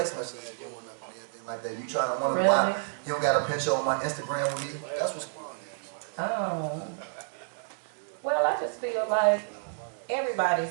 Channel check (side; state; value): left; silent; digital silence